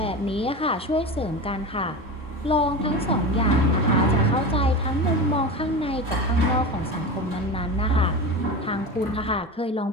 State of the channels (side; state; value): both; normal; correlation 0.25